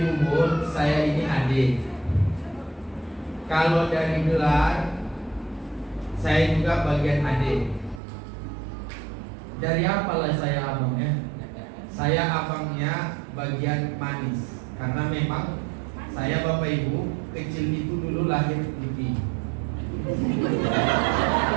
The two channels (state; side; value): drops out; left; at 8.0 s